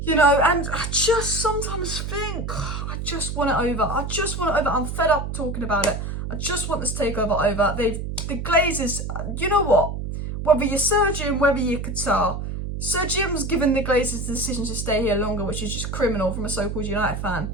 You know, and I just sometimes think, I just want it over. I just want it over. I'm fed up talking about it. I just want this takeover over. The Glazers, you know what? Whether you're Sir Jim, whether you're Qatar, Sir Jim's given the Glazers the decision to stay here longer, which is just criminal from a so-called United fan.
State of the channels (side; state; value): right; noise; hum, 5 dB below the sound